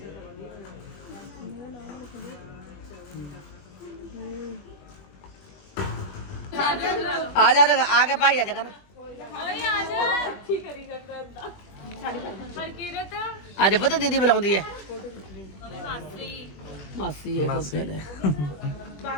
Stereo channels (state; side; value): late; right; 21 ms